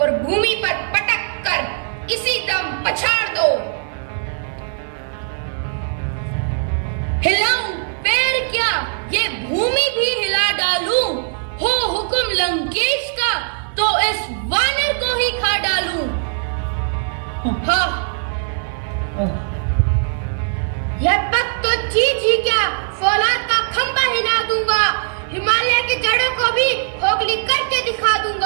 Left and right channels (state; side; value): silent; left; digital silence